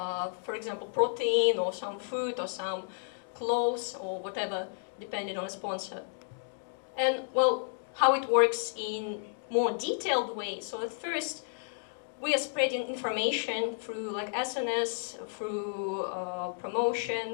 example, protein or some food or some clothes or whatever, depending on a sponsor. And well, how it works in more detailed way. So at first, we are spreading information through SNS, through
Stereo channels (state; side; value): silent; right; digital silence